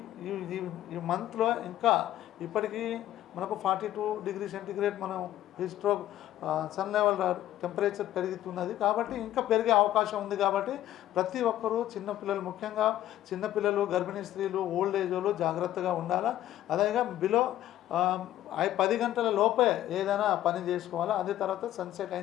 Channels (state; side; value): quieter; right; 13.3 dB